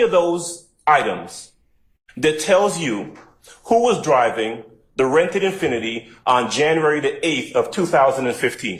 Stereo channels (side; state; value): both; identical; correlation 1.00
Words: of those items that tells you who was driving the rented Infinity on January the 8th of